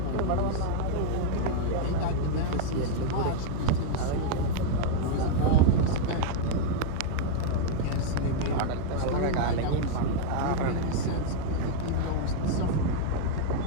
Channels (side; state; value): both; different; correlation -0.01